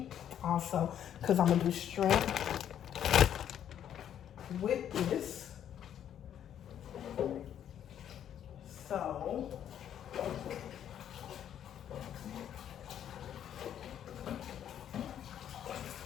also, because I'm gonna do shrimp with this. So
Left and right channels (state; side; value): quieter; right; 9.9 dB